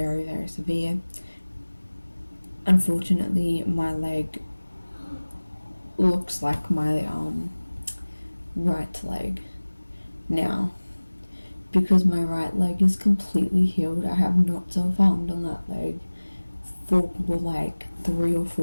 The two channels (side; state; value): both; inverted; correlation -1.00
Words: very severe. Unfortunately, my leg looks like my right leg now, because my right leg is completely healed. I have not self-harmed on that leg for like 3 or